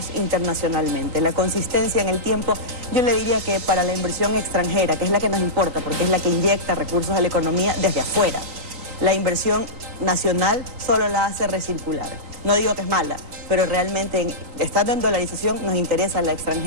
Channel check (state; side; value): late; left; 3.9 ms